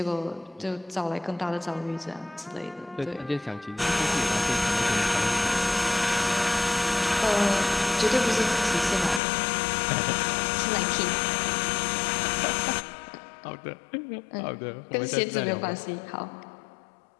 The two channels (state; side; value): drops out; right; at 9.2 s